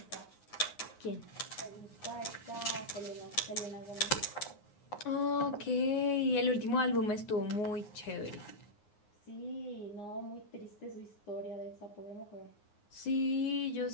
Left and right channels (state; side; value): late; right; 9.6 ms